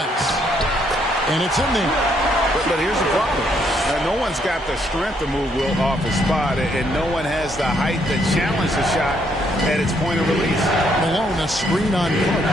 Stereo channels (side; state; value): both; normal; correlation 0.71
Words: And it's in there. But here's the problem. No one's got the strength to move Wilt off his spot, and no one has the height to challenge the shot at its point of release. Malone, a screen on